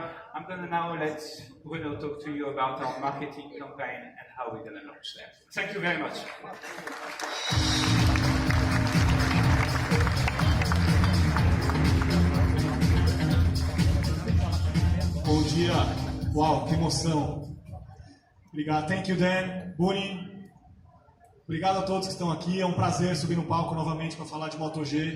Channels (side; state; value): both; identical; correlation 1.00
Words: going to now let Bruno talk to you about our marketing campaign and how we're going to launch them. Thank you very much. Bom dia. Uau, que emoção. Obrigado. Thank you, Dan. Buni. Obrigado a todos que estão aqui. É um prazer subir no palco novamente para falar de Moto